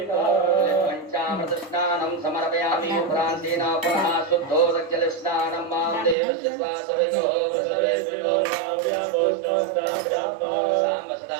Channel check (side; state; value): left; drops out; at 6.2 s